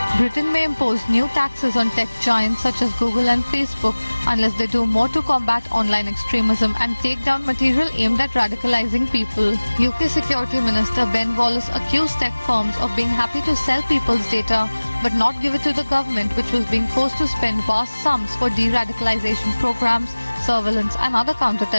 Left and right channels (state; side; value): inverted; both; correlation -1.00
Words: Britain may impose new taxes on tech giants such as Google and Facebook unless they do more to combat online extremism and take down material aimed at radicalizing people. UK Security Minister Ben Wallace accused tech firms of being happy to sell people's data but not give it to the government, which was being forced to spend vast sums for de-radicalization programs, surveillance and other